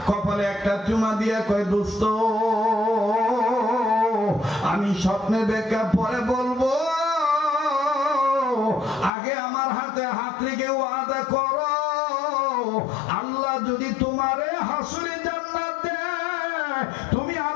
কপালে একটা চুমা দিয়া কয়, দোস্ত আমি স্বপ্নের ব্যাখ্যা পরে বলবো, আগে আমার হাতে হাত রেখে ওয়াদা করো, আল্লাহ যদি তোমারে হাসরে জান্নাত দেয় তুমি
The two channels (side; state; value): right; drops out; at 9.1 s